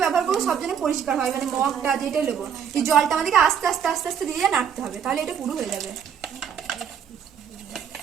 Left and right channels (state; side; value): quieter; left; 7.9 dB